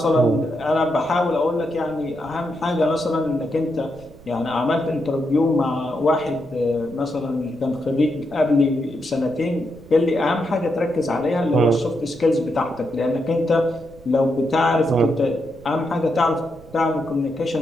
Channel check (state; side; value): noise; right; rumble, 21 dB below the sound